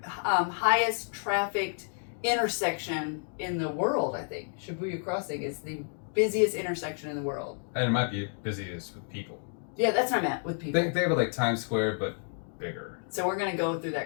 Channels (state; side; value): silent; right; 58 dB below the other